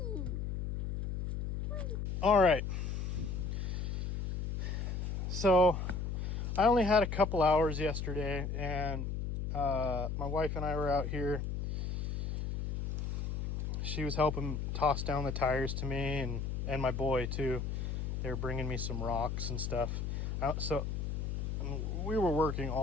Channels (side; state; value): left; noise; hum, 2 dB below the sound